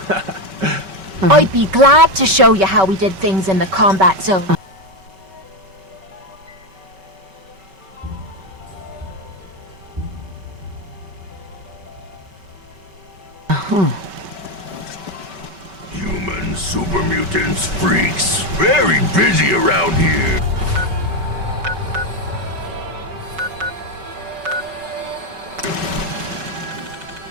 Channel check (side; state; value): left; late; 5.2 ms